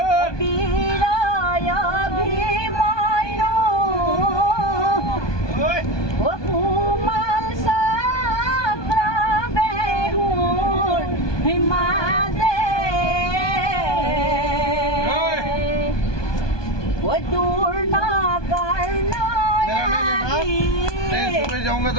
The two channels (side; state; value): right; late; 1.2 ms